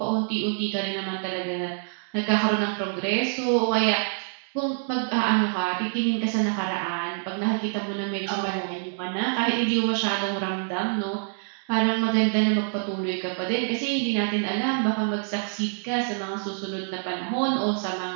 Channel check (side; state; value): left; silent; 61 dB below the other